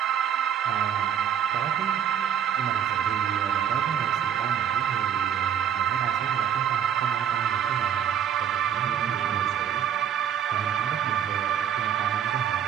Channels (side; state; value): left; quieter; 9.0 dB